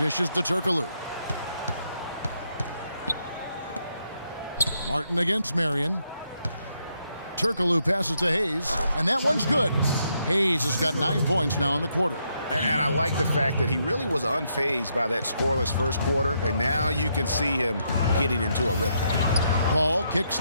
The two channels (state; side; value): inverted; both; correlation -0.77